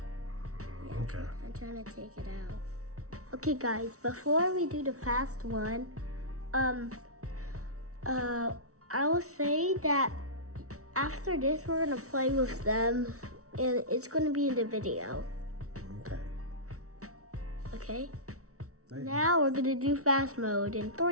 Yeah, Okay. I'm trying to take it out. Okay, guys, before we do the fast one, I will say that after this, we're gonna play with them, and it's gonna be in the video. Okay. Okay? Now we're gonna do fast mode in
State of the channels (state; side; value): late; left; 0.64 ms